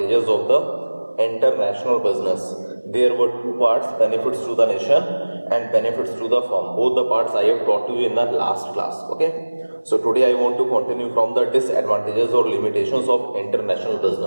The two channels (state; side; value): inverted; both; correlation -1.00